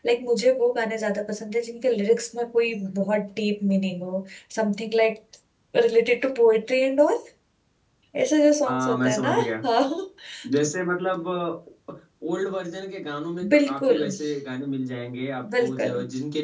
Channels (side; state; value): both; identical; correlation 1.00